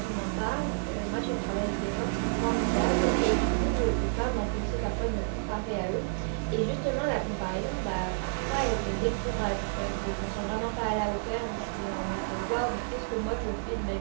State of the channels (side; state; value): left; silent; 58 dB below the other